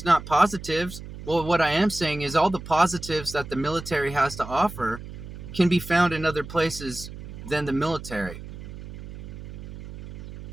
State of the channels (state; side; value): noise; right; hum, 12 dB below the sound